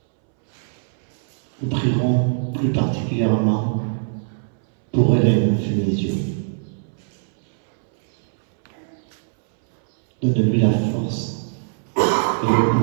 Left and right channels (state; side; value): silent; left; 65 dB below the other